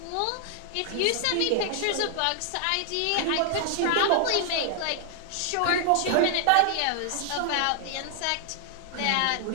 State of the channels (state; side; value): different; both; correlation 0.00